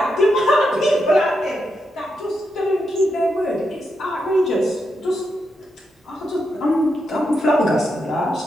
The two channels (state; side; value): normal; both; correlation 0.84